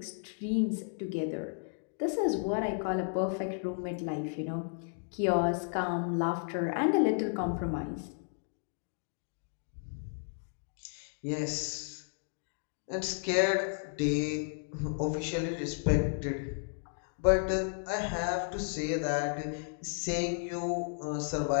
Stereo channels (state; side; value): silent; right; digital silence